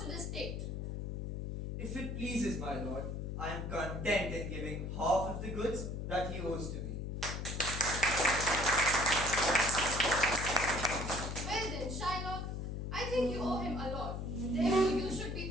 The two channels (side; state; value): left; noise; hum, 4 dB below the sound